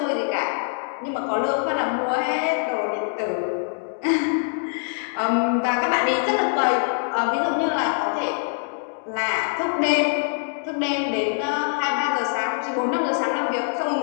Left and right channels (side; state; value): right; silent; 59 dB below the other